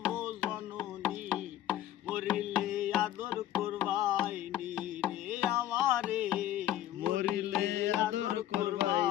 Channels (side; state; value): right; quieter; 12.5 dB